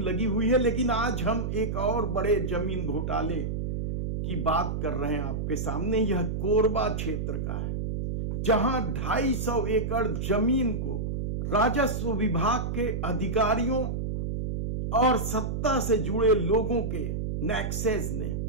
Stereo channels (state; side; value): noise; right; hum, 2 dB below the sound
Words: लगी हुई है। लेकिन आज हम एक और बड़े जमीन घोटाले की बात कर रहे हैं आपके सामने। यह कोरबा क्षेत्र का है, जहां 250 एकड़ जमीन को राजस्व विभाग के अधिकारियों और सत्ता से जुड़े लोगों के नेक्सेस ने